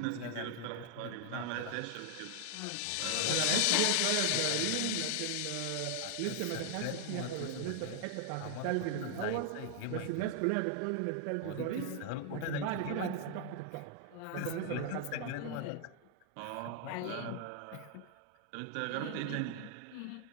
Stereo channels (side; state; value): both; different; correlation 0.00